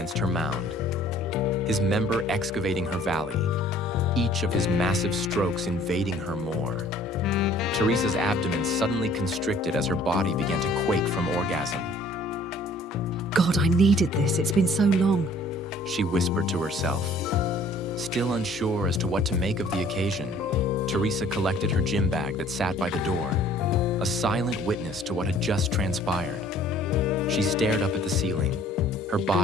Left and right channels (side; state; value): both; normal; correlation 0.55